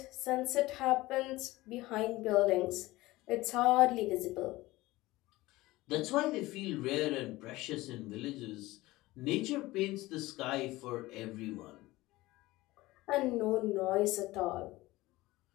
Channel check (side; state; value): right; quieter; 18.9 dB